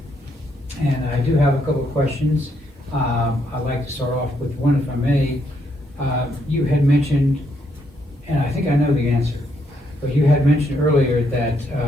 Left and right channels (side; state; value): both; normal; correlation 0.75